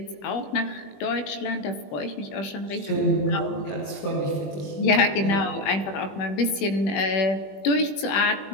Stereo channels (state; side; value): late; right; 20 ms